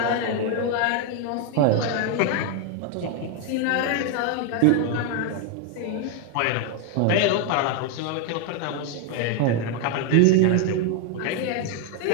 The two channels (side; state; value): both; different; correlation 0.01